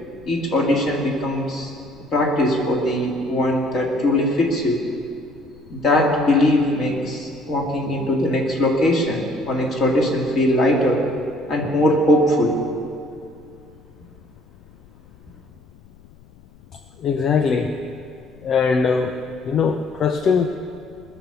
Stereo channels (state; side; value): noise; left; rumble, 26 dB below the sound